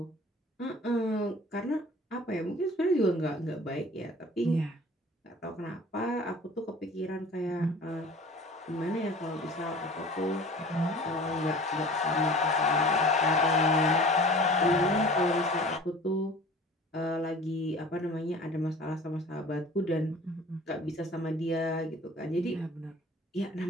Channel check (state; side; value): normal; both; correlation 0.44